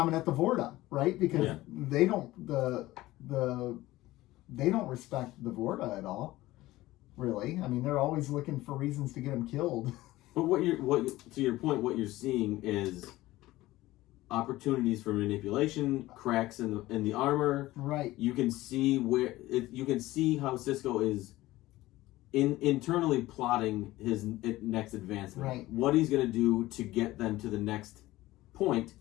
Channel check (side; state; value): right; quieter; 17.4 dB